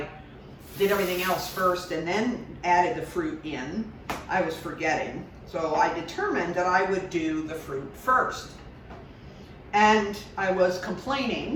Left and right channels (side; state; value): both; identical; correlation 1.00